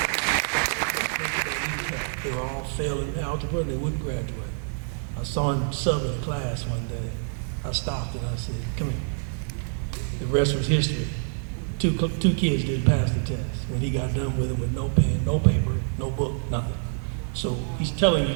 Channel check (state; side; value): silent; left; digital silence